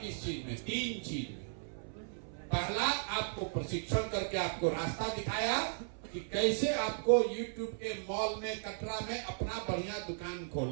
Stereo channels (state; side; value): silent; left; 54 dB below the other